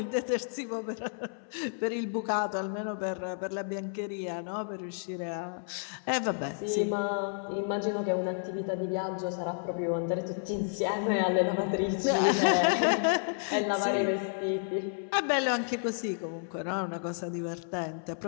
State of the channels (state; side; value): silent; right; 57 dB below the other